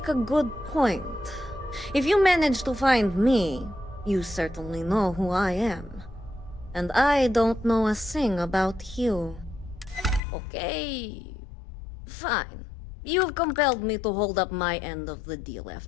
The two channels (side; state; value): right; drops out; at 10.2 s